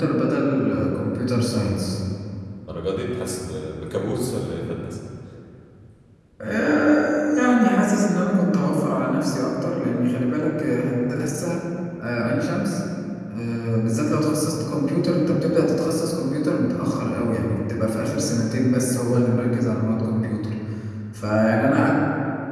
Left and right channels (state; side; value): identical; both; correlation 1.00